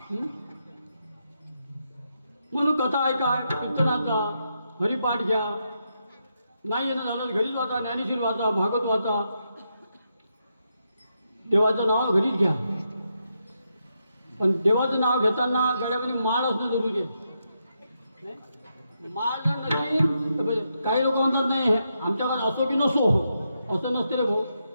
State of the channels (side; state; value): both; inverted; correlation -0.82